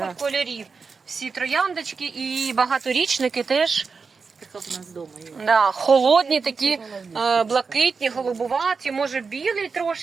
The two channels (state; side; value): quieter; left; 5.0 dB